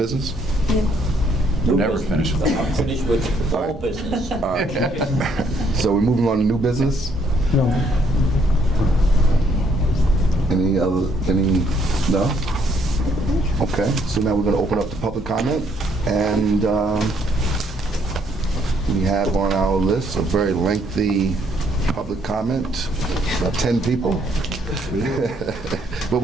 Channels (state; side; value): normal; both; correlation 0.69